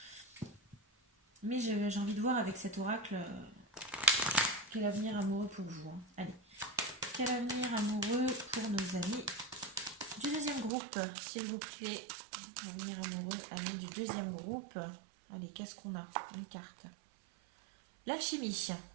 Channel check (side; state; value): left; drops out; at 10.7 s